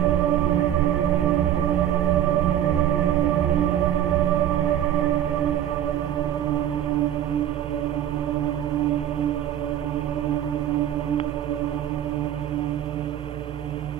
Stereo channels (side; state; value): left; quieter; 11.2 dB